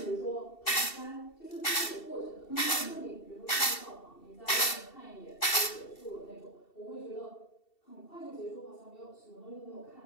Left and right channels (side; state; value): right; late; 2.7 ms